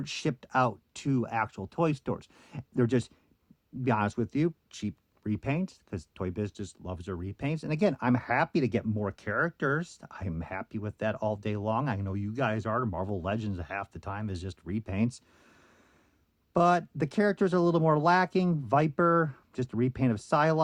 shipped out to actual toy stores. They're just, to be honest with you, cheap repaints, because Toy Biz just loves their repaints. And again, I'm happy to get more characters. I'm happy with that all day long. I know you guys are. Marvel Legends half the time is just repaints. But the characters are a little more lacking. Viper, just a repaint of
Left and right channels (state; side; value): identical; both; correlation 1.00